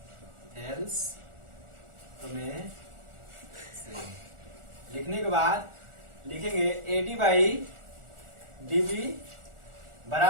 थेल्स प्रमेय से लिखने के बाद लिखेंगे AD बाई DB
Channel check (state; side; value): late; left; 1.4 ms